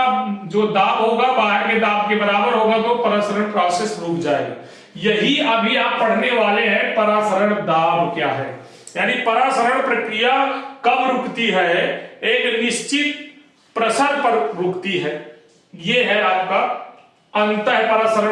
जो दाब होगा बाहर के दाब के बराबर होगा, तो परासरण प्रोसेस रुक जाएगा। यही अभी आप पढ़ने वाले हैं, परासरण दाब क्या है, यानी परासरण प्रक्रिया कब रुकती है, एक निश्चित प्रसर पर रुकती है। यह है आपका अंतः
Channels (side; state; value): both; identical; correlation 1.00